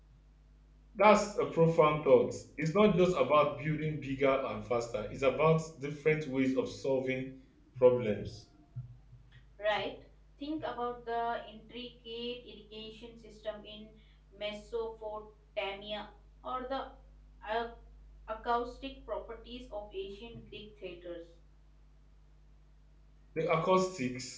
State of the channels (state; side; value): identical; both; correlation 1.00